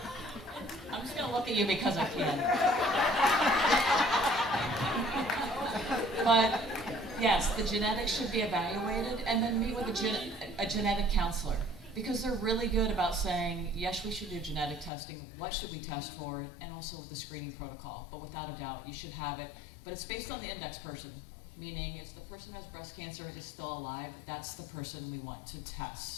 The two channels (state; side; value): drops out; right; at 14.9 s